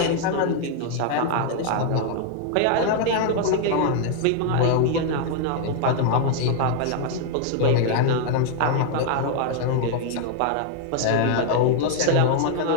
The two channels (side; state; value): both; different; correlation 0.00